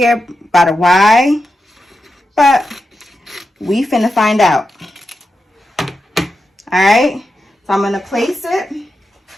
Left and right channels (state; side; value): normal; both; correlation 0.89